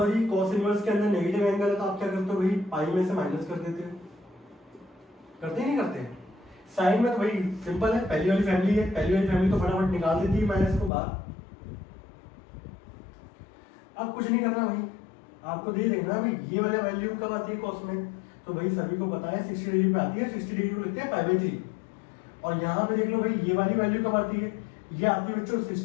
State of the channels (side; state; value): right; drops out; at 10.9 s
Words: कॉस इनवर्स के अंदर नेगेटिव एंगल है तो आप क्या करते हो भाई, पाई में से माइनस कर देते हो, करते ही नहीं करते। साइन में तो भाई सिंपल है, पहली वाली फैमिली है, पहली वाली फैमिली तो फटाफट निकाल देती है माइनस को बाहर। अब कुछ नहीं करना भाई, आपको दे देखना भाई ये वाला वैल्यू कब आती है कॉस में, तो भाई सभी को पता है 60 डिग्री पे आती है, 60 डिग्री को लिखते हैं π/3। और यहाँ पे देख लो भाई ये वाली वैल्यू कब आती है, ये आती है बच्चों